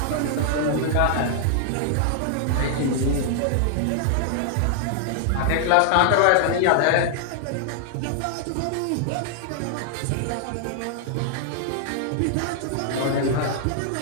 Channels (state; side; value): different; both; correlation -0.01